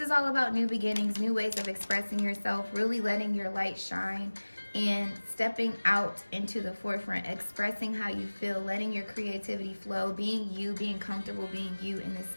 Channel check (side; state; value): both; inverted; correlation -1.00